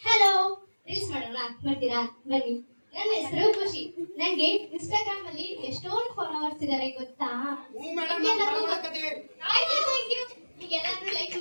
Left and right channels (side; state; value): both; inverted; correlation -1.00